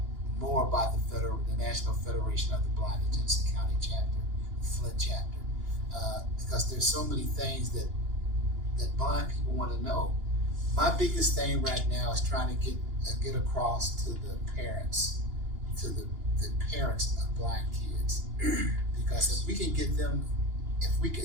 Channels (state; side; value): late; left; 2.9 ms